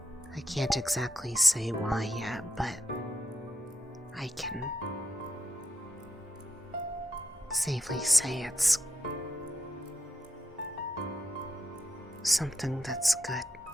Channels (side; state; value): both; normal; correlation 0.84